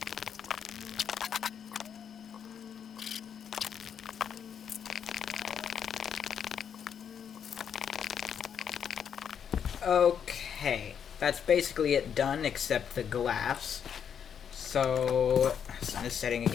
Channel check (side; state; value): right; quieter; 7.9 dB